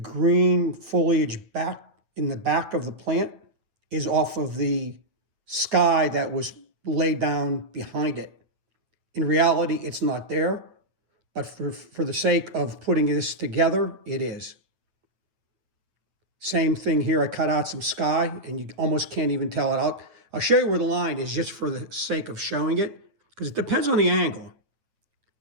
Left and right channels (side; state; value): left; late; 9.1 ms